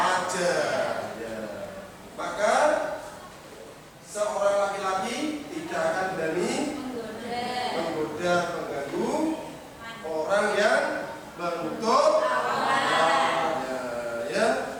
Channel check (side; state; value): both; identical; correlation 1.00